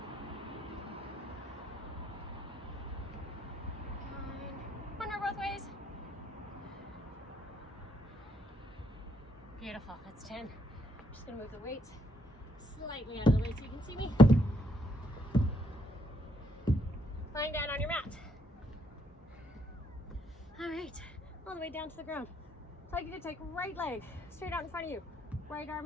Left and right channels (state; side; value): normal; both; correlation 0.72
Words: 9. One more both ways. Beautiful. That's 10. I'm just going to move the weights slightly out of the way so you can see me. Lying down on your mat. All right, all the way down to the ground. So I'd like you to take right leg straight out in front of you. Right